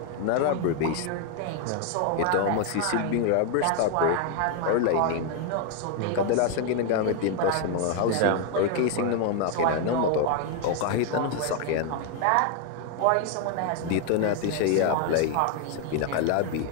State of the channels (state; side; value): different; both; correlation 0.00